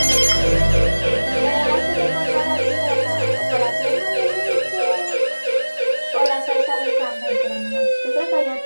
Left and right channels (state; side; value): inverted; both; correlation -1.00